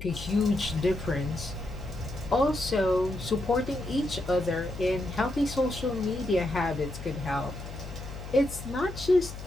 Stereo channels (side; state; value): left; noise; hum, 11 dB below the sound